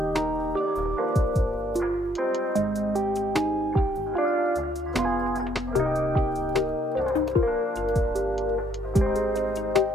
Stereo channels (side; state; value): both; normal; correlation 0.69